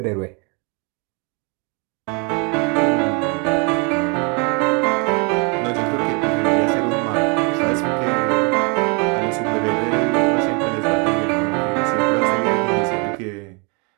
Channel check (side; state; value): left; quieter; 33.3 dB